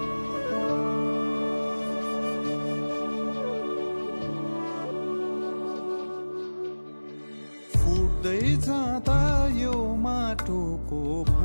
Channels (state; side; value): inverted; both; correlation -1.00